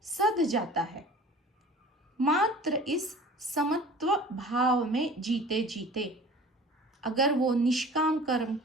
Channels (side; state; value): both; normal; correlation 0.43